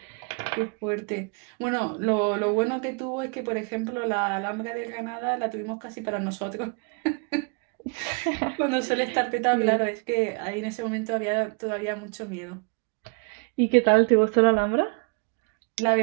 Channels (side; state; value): left; quieter; 34.5 dB